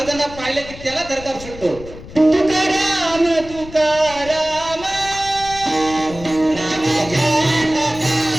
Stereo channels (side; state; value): left; noise; rumble, 15 dB below the sound